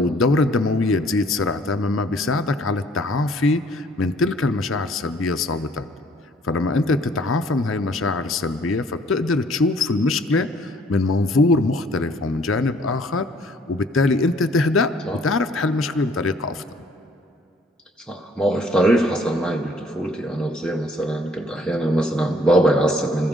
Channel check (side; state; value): both; normal; correlation 0.59